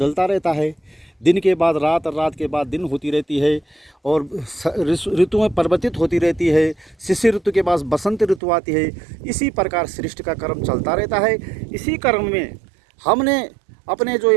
रहता है। दिन के बाद रात और रात के बाद दिन होती रहती है और ऋतुएं परिवर्तित होती रहती है। शिशिर ऋतु के बाद बसंत ऋतु आती है। इसी प्रकार सृष्टि का क्रम चलता रहता है। इसी क्रम में हमने अपने जो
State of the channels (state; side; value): drops out; left; at 8.4 s